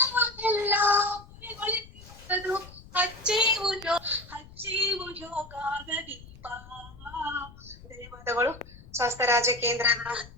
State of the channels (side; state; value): left; noise; rumble, 19 dB below the sound